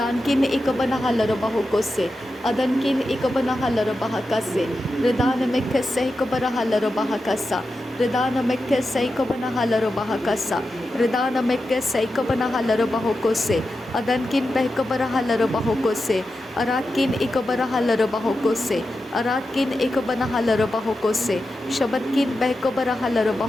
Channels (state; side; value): normal; both; correlation 0.90